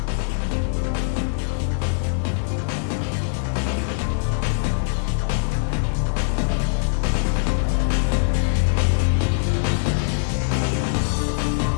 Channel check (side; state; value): right; silent; digital silence